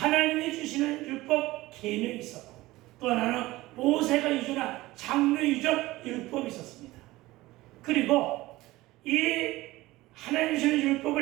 주시는 율법 계명이 있었고, 또 하나는 모세가 유전한 장로 유전 율법이 있었습니다. 그리고 이 하나님 주시는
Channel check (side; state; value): left; quieter; 18.6 dB